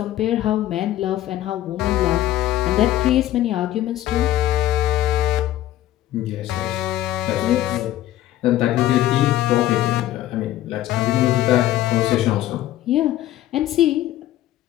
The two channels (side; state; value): right; quieter; 13.9 dB